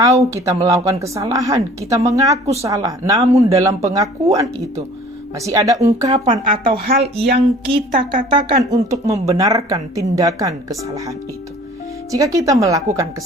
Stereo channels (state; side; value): normal; both; correlation 0.49